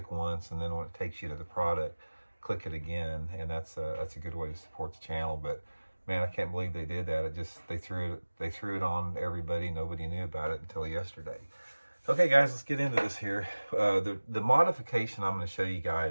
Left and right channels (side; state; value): both; inverted; correlation -1.00